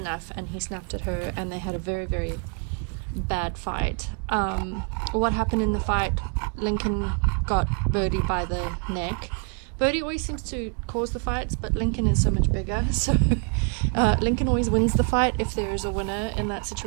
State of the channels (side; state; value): left; quieter; 38.1 dB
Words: and he snapped at her, and they had a very bad fight. What happened in the fight? Lincoln got Birdie by the neck. Birdie always seems to cause the fights, but Lincoln is so much bigger, so Lincoln always wins the fight if there is a winner in that